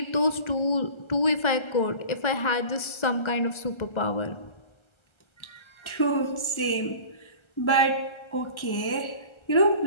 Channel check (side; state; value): right; late; 1.3 ms